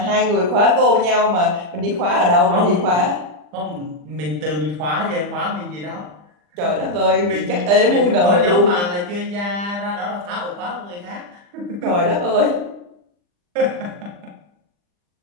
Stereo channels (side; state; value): left; late; 40 ms